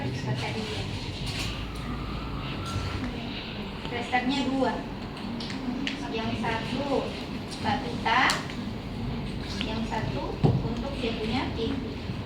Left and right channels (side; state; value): both; identical; correlation 1.00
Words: kata dia. Blasternya 2. Yang satu batuta, yang satu untuk dia punya pipi.